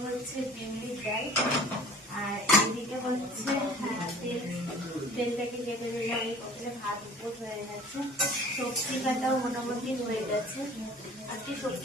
হচ্ছে বিউলির ডাল। আর এইদিকে হচ্ছে তেলটাকে কেটে দিলাম, এই কতটা ভাত উপর হয়ে গেছে। সবজি কাটাও মোটামুটি হয়ে গেছে। আজকে সবজি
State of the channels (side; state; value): both; normal; correlation 0.47